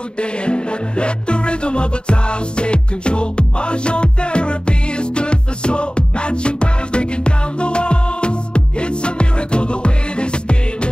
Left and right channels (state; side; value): late; right; 0.051 ms